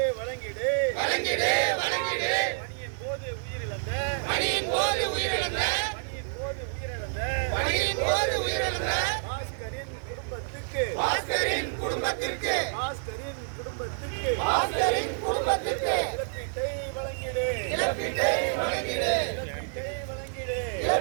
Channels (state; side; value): silent; left; digital silence